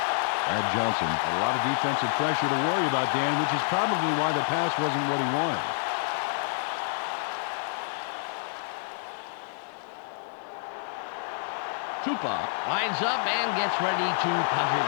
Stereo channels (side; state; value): right; silent; digital silence